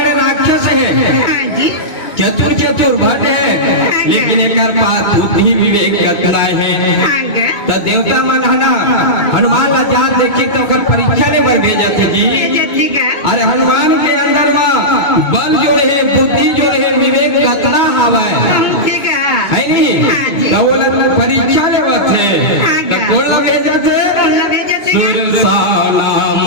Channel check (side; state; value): right; late; 2.2 ms